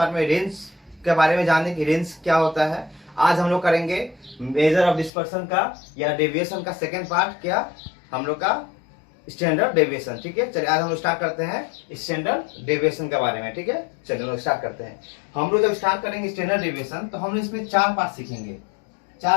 में रेंज के बारे में जाने की रेंज क्या होता है। आज हम लोग करेंगे मेजर ऑफ डिस्पर्सन का या डेविएशन का सेकेंड पार्ट, क्या हम लोग का स्टैंडर्ड डेविएशन। ठीक है, चलिए आज हम लोग स्टार्ट करते हैं स्टैंडर्ड डेविएशन के बारे में। ठीक है, चलिए हम लोग स्टार्ट करते हैं। हम लोग जब स्टार्ट करेंगे स्टैंडर्ड डेविएशन तो हम लोग इसमें चार पार्ट सीखेंगे।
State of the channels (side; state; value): right; drops out; at 5.1 s